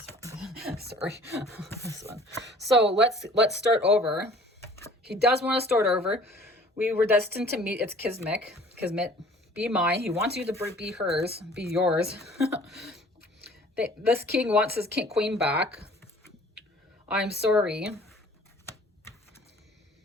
one. Sorry, this one. So let's start over. He does want to start over. We were destined to meet. It's Kismet. Be mine. He wants you to be hers, be yours. This king wants his queen back. I'm sorry.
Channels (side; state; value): both; normal; correlation 0.51